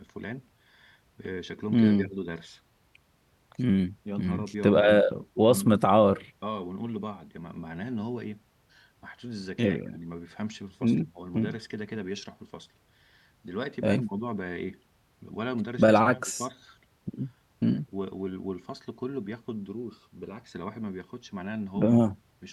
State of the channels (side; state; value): both; identical; correlation 1.00